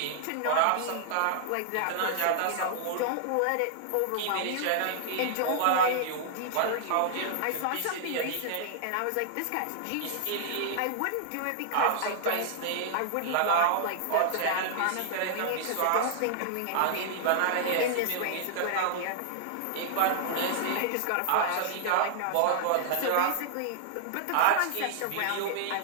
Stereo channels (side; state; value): both; different; correlation -0.01